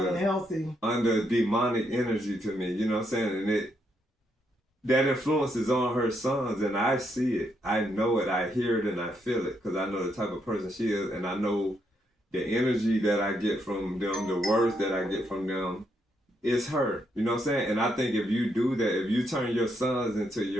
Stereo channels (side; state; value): both; normal; correlation 0.77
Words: demonic energy to me. You know what I'm saying? And that influence is on her sons, and I see it. I know it. I hear it, and I feel it because I know the type of person she is, and I know the energy that I get from them, the words that I get from them, it's her. You know what I'm saying? And I think if you do that, if you turn your sons into